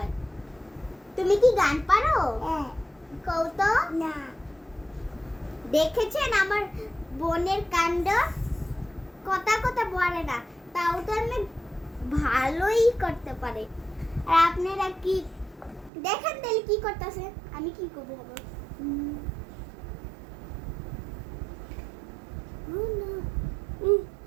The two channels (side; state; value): left; drops out; at 15.9 s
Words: তুমি কি গান পারো? কও তো। না। দেখেছেন আমার বোনের কাণ্ড? কথা কথা বলে না, তাও তো আমি ভালোই করতে পারে। আর আপনারা কি দেখেন তাহলে কি করতেছে? আমি কি করবো আবার?